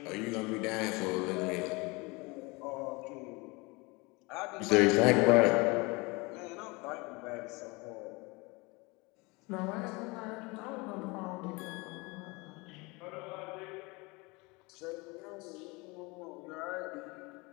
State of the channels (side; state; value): right; quieter; 26.0 dB